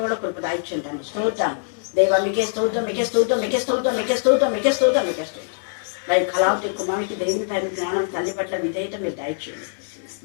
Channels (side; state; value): right; silent; digital silence